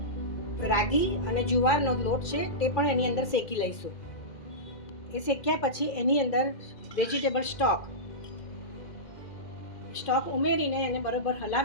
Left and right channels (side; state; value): right; late; 2.0 ms